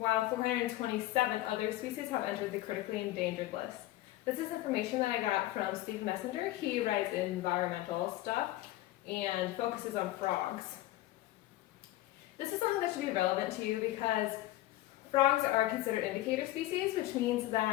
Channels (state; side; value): quieter; right; 16.1 dB